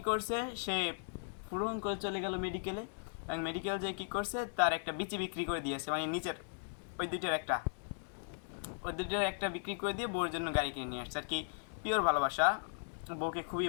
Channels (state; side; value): silent; right; digital silence